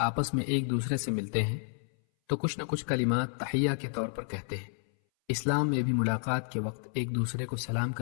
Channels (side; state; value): right; silent; 57 dB below the other